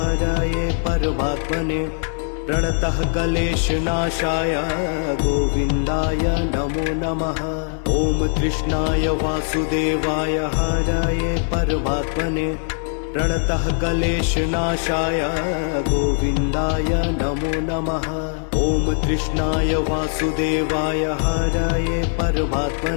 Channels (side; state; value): right; silent; 65 dB below the other